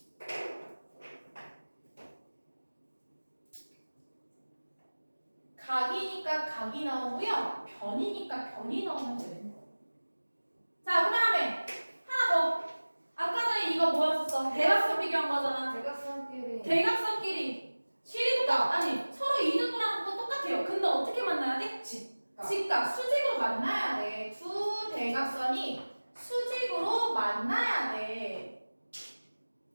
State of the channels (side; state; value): both; inverted; correlation -1.00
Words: 각이니까 각이 나오고요. 변이니까 변이 나오면 되는 거예요. 자, 그 다음에 하나 더. 아까 전에 이거 뭐였었어? 대각선 비교한 거잖아. 대각선끼리. 대각선끼리 실이가 아니 서로 이등분하는 건 똑같아요. 근데 어떻게 만나야 돼? 직각 수직으로 만나야 돼. 두 대각선이 수직으로 만나야 돼.